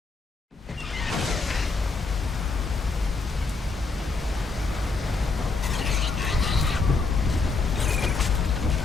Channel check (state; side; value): quieter; right; 4.2 dB